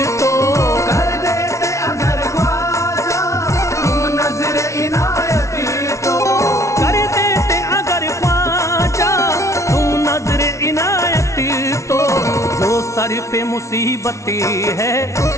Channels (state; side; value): late; right; 0.14 ms